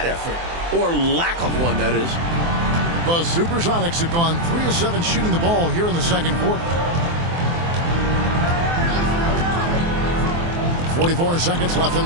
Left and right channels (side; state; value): left; late; 24 ms